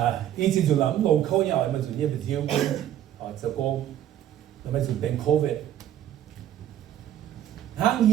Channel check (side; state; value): left; quieter; 11.3 dB